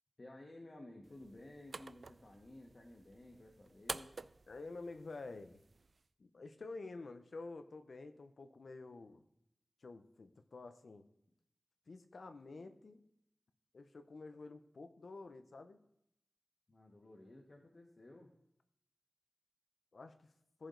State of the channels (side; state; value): both; normal; correlation 0.93